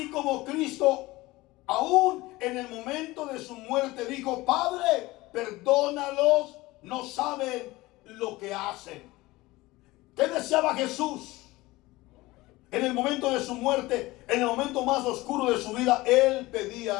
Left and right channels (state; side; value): quieter; right; 19.9 dB